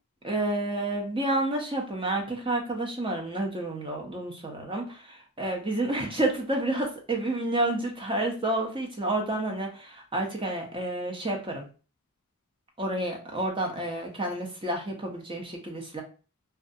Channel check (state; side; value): normal; both; correlation 0.25